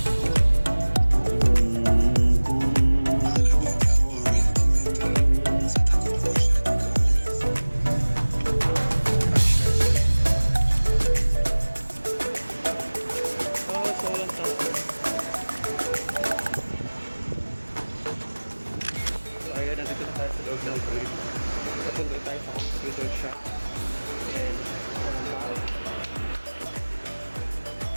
Papunta tayo sa computer shop and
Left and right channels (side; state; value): both; inverted; correlation -1.00